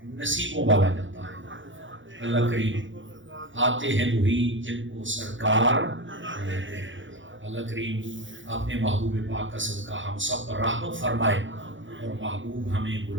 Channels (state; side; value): late; left; 0.56 ms